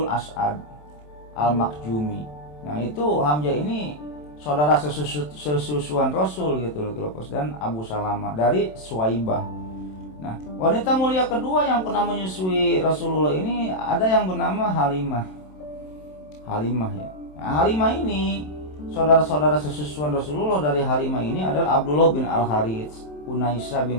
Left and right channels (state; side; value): late; right; 27 ms